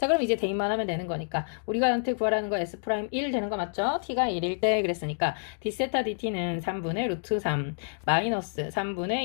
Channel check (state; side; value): silent; right; digital silence